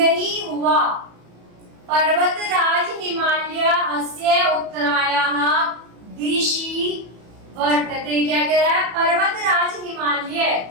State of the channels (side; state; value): left; late; 34 ms